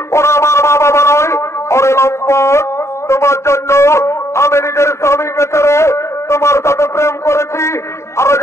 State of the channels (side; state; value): right; late; 0.13 ms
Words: ওরা আমার মা বাবা নয় ওরে লম্পট তোমার জন্য আমি নিজের স্বামীকে ছেড়ে তোমার সাথে প্রেম করেছি আর আজ